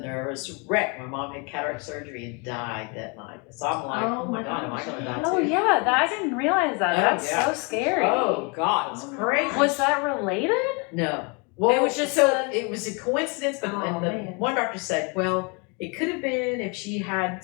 wreck. My mom had cataract surgery and died that night. So I'm like, oh my God, am I going to die too? Oh yeah, I didn't realize that. That's so scary. Oh God, it's crazy. Was that related? No. Well, it was just it was a coincidence, but one doctor said, well, it could have been if she had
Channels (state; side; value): quieter; right; 32.1 dB